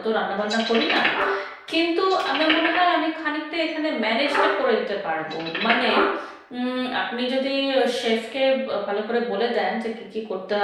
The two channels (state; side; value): identical; both; correlation 1.00